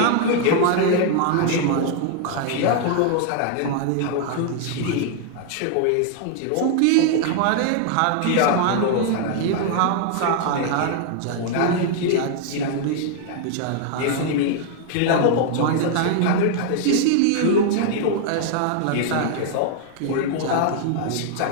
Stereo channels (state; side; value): different; both; correlation 0.00